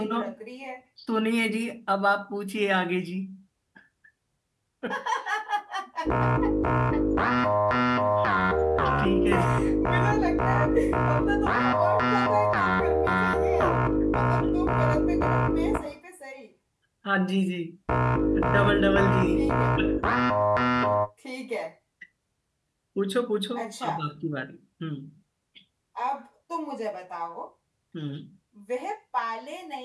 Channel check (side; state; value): both; identical; correlation 1.00